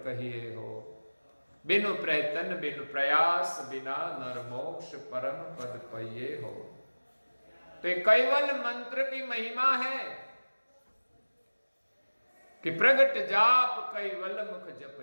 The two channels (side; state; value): both; inverted; correlation -1.00